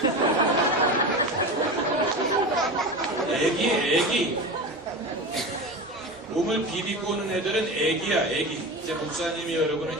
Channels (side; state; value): both; normal; correlation 0.26